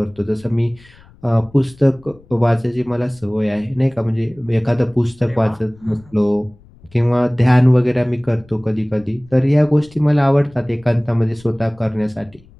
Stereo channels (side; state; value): left; noise; rumble, 26 dB below the sound